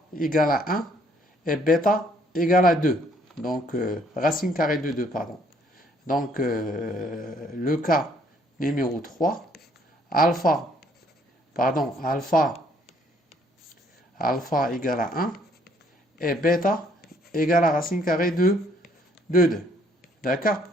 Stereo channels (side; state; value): both; normal; correlation 0.65